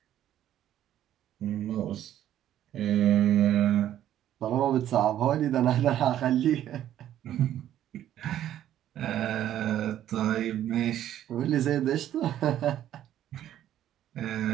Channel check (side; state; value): left; quieter; 11.7 dB